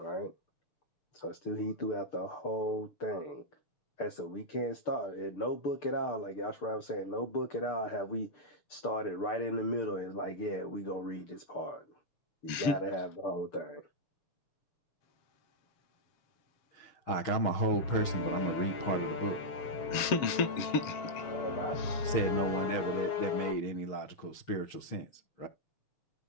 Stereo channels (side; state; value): right; late; 7.3 ms